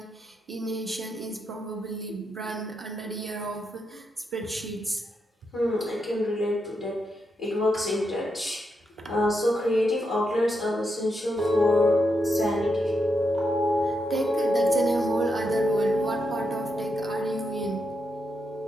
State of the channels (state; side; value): normal; both; correlation 0.83